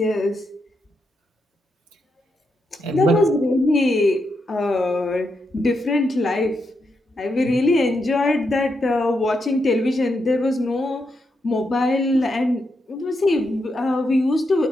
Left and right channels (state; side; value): normal; both; correlation 0.83